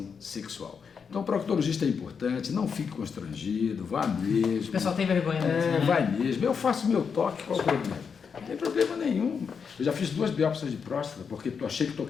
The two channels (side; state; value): right; quieter; 6.2 dB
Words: sexual. Então, o proctologista é importante, não fique constrangido, vá mesmo. O pessoal tem vergonha mesmo, né? Vai mesmo. Eu faço meu toque, qual o problema? Não tem problema nenhum. Eu já fiz 2 biópsias de próstata, porque eu achei que